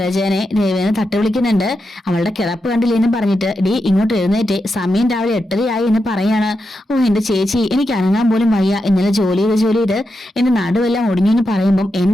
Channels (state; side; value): normal; both; correlation 0.87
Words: ദേവേനെ തട്ടി വിളിക്കുന്നുണ്ട്. അവളുടെ കിടപ്പ് കണ്ടില്ലേന്നും പറഞ്ഞിട്ട് ഡി ഇങ്ങോട്ട് എഴുന്നേറ്റ്, സമയം രാവിലെ 8:30 എന്ന് പറയാണ്. ഓ എന്റെ ചേച്ചി എനിക്ക് അനങ്ങാൻ പോലും വയ്യ, ഇന്നലെ ജോലി ചെയ്ത് എന്റെ നടുവെല്ലാം ഒടിഞ്ഞു എന്ന് പറയുമ്പോൾ